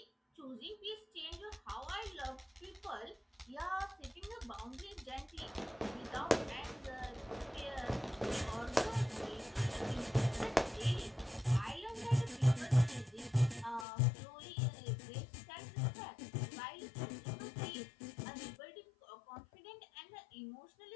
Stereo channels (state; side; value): drops out; right; at 13.9 s